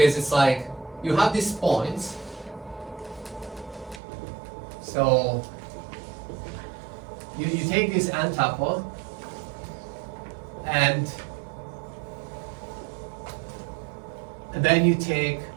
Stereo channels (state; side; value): drops out; left; at 4.0 s